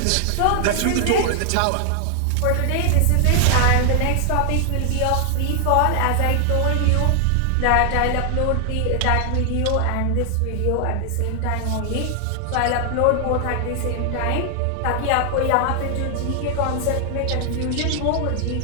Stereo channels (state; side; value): different; both; correlation 0.00